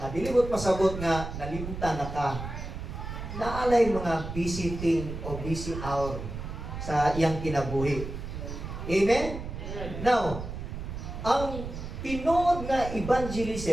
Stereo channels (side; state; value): right; noise; rumble, 7 dB below the sound